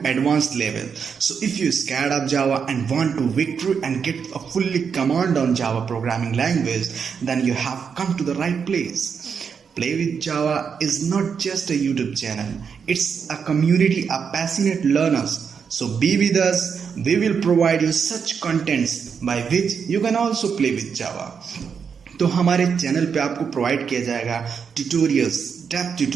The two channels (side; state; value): left; quieter; 6.5 dB